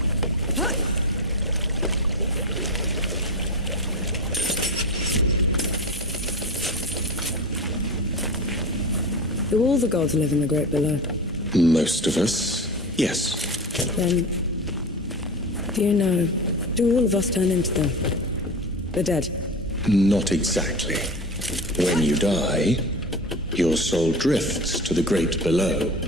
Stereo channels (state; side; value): normal; both; correlation 0.27